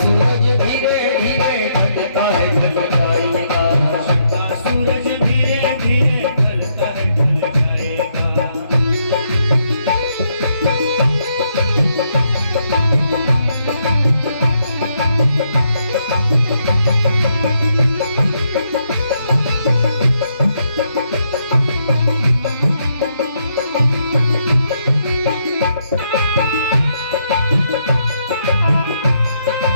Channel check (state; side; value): inverted; both; correlation -0.76